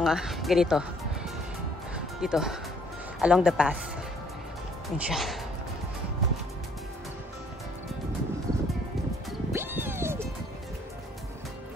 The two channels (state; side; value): normal; both; correlation 0.62